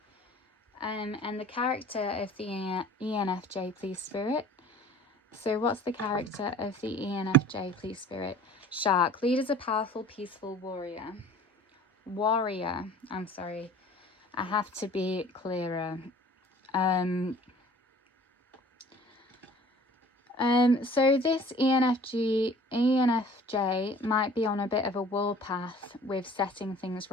and the character of the ENFJ, please, Spirit. So what's the character of the ENFJ, please, Spirit? Shark, lead as a powerful, peaceful warrior. I'm sorry, I have to be clearer. So this ENFJ might be on a bit of a warpath with setting things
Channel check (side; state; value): both; normal; correlation 0.48